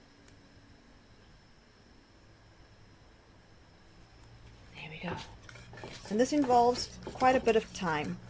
There we go. And this involves quite a bit of time.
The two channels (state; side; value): identical; both; correlation 1.00